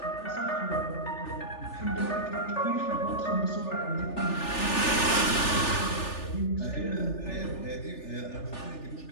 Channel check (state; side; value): late; right; 3.4 ms